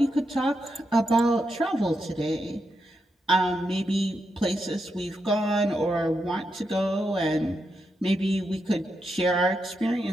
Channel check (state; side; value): normal; both; correlation 0.84